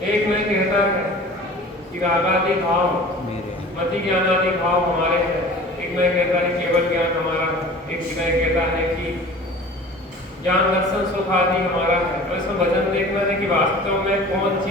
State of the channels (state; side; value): normal; both; correlation 0.42